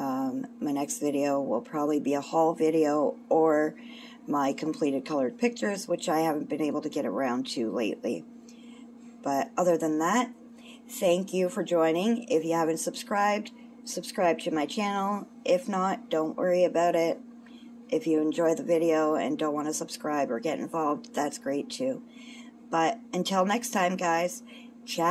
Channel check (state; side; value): identical; both; correlation 1.00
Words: next video will probably be a haul video or my completed colored pictures, which I haven't been able to get around to lately. But other than that, thank you for joining. If you haven't subscribed, subscribe to my channel. If not, don't worry about it. If you enjoy the video and don't want to subscribe or get involved, that's great too. But until next time, guys,